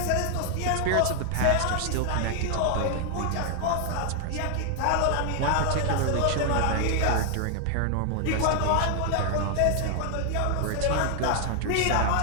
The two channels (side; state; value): both; different; correlation 0.00